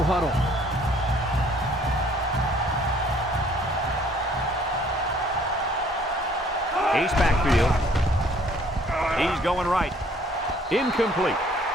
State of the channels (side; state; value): both; normal; correlation 0.59